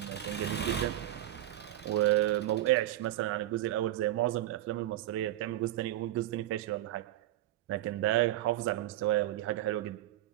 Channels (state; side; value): quieter; left; 14.1 dB